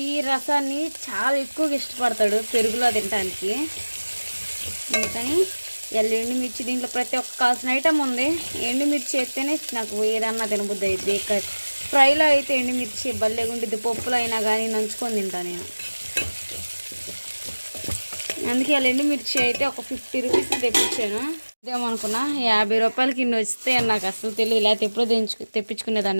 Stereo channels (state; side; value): inverted; both; correlation -1.00